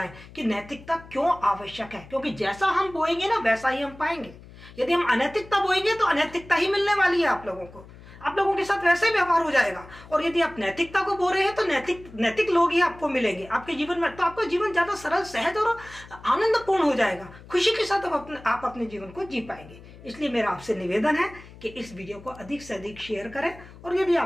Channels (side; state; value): left; noise; hum, 19 dB below the sound